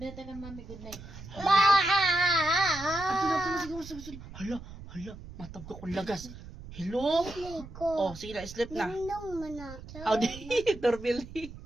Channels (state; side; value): noise; right; rumble, 14 dB below the sound